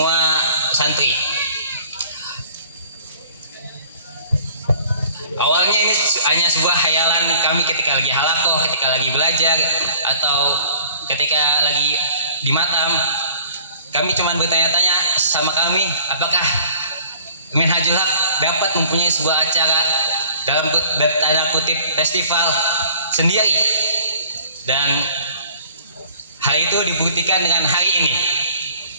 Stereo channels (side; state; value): both; inverted; correlation -0.51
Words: santri. Awalnya ini hanya sebuah khayalan kami ketika lagi halakoh, ketika lagi belajar, atau ketika lagi di matam. Kami cuma bertanya-tanya sama kami, apakah Minhajul Haq dapat mempunyai sebuah acara dalam tanda kutip festival sendiri. Dan hal itu dibuktikan dengan hari ini